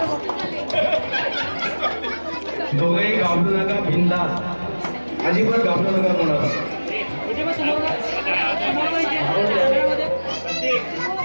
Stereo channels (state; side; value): inverted; both; correlation -1.00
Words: दोघेही घाबरू नका, बिंदास, अजिबात घाबरू नका कोणाला.